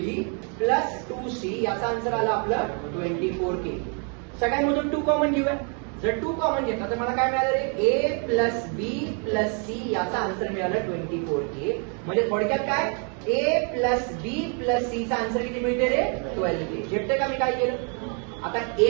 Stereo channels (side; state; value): left; quieter; 39.0 dB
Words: plus 2c, याचा आन्सर आला आपलं 24k. सगळ्यांमधून 2 कॉमन घेऊया, जर 2 कॉमन घेतला तर मला काय मिळालं रे, ए प्लस बी प्लस सी, याचा आन्सर मिळाला 24k. म्हणजे थोडक्यात काय, ए प्लस बी प्लस सी चा आन्सर किती मिळते रे, 12k. झेपते का मी काय केलं? आता